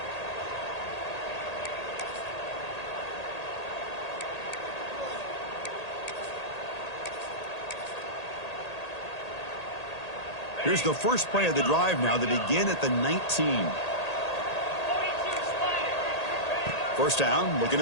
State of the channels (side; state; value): right; late; 1.8 ms